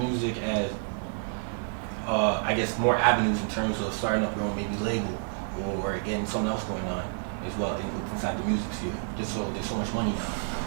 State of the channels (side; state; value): left; silent; 59 dB below the other